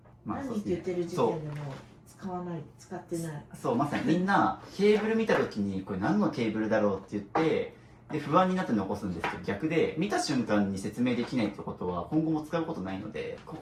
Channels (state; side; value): identical; both; correlation 1.00